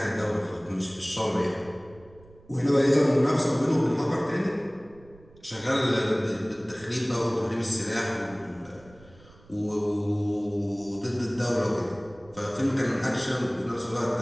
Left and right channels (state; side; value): noise; right; rumble, 25 dB below the sound